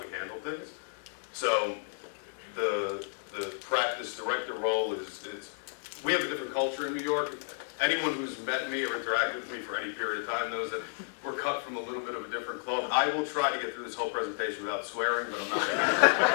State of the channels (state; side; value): silent; right; digital silence